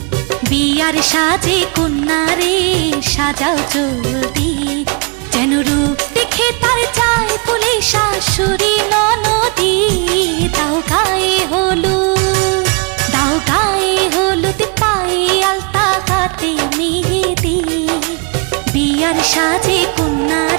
বিয়ার সাজে কন্যারে সাজাও চলতি, যেন রূপ দেখে তার চায় বলে শাশুড়ি ননদি। দাও গায়ে হলুদ, দাও গায়ে হলুদ, পায়ে আলতা, হাতে মেহেদি, বিয়ার সাজে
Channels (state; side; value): quieter; left; 32.8 dB